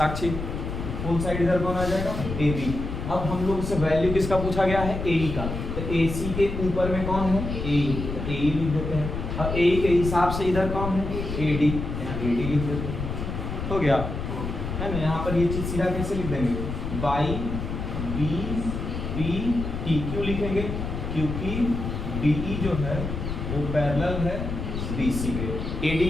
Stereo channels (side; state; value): left; noise; rumble, 5 dB below the sound